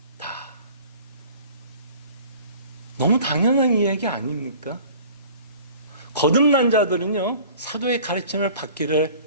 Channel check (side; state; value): both; inverted; correlation -0.47